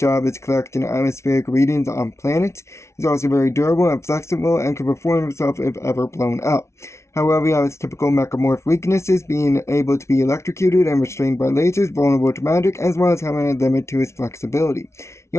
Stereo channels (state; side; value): late; right; 0.13 ms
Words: is collecting atmospheric readings on planets. He's also very durable and flexible, and can perform himself if ever blown up. However, he has typical mechamorph weaknesses, being able to be electrocuted and restrained by lasers, vulnerable to magic, as well as having a limit to his flexibility. He